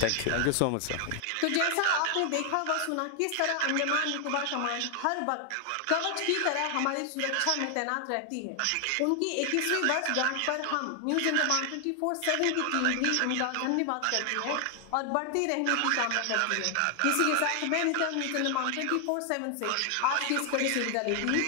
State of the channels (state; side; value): different; both; correlation 0.00